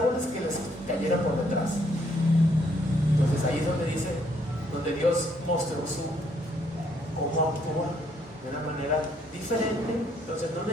que les cayera por detrás. Entonces ahí es donde dice, donde Dios mostró cómo actúa de una manera diferente. Entonces no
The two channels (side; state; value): both; normal; correlation 0.69